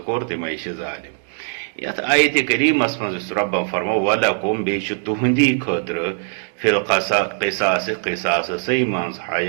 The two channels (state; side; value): silent; left; 65 dB below the other